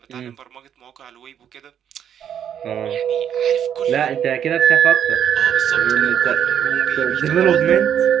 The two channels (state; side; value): quieter; left; 9.1 dB